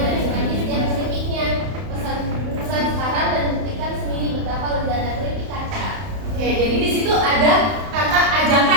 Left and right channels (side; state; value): left; late; 31 ms